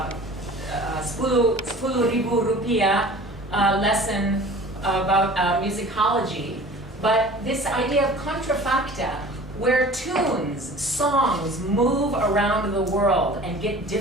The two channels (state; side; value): normal; both; correlation 0.43